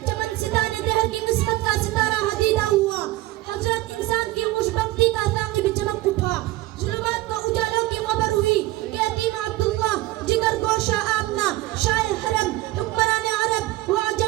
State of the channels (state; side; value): quieter; left; 17.8 dB